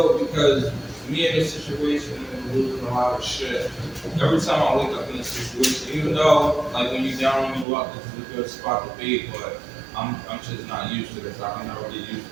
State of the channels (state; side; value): drops out; left; at 7.7 s